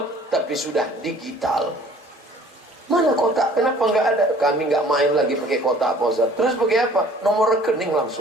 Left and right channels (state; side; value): normal; both; correlation 0.53